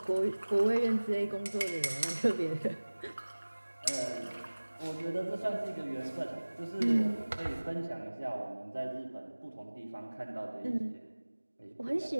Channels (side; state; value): both; inverted; correlation -1.00